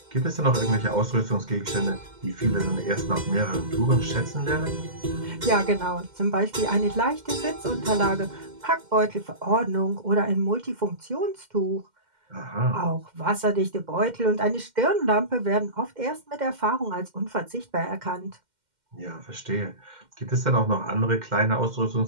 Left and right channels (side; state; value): left; late; 2.1 ms